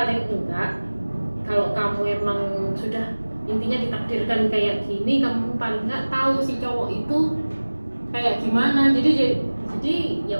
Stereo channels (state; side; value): inverted; both; correlation -1.00